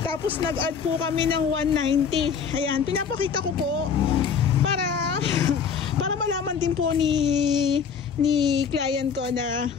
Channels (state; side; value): quieter; right; 6.6 dB